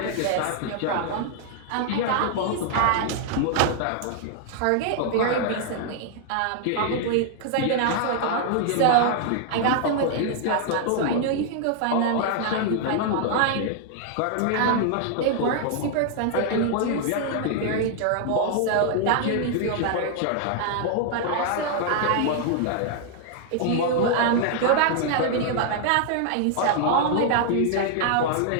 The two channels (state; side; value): different; both; correlation 0.00